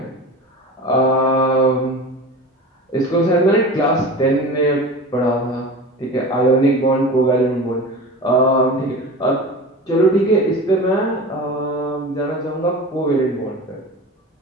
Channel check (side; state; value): both; normal; correlation 0.33